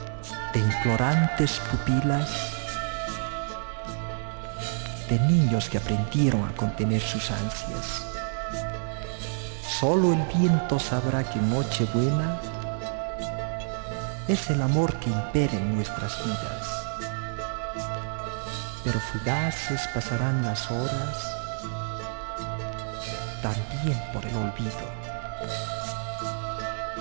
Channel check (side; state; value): left; silent; 59 dB below the other